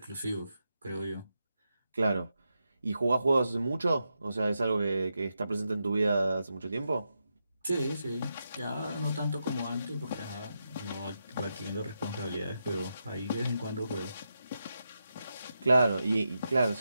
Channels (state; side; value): inverted; both; correlation -0.86